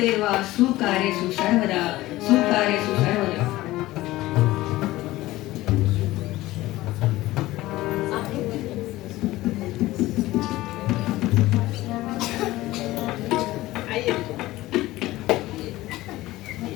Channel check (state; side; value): quieter; right; 17.5 dB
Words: सुकार्येषु सर्वदा सुकार्येषु सर्वदा।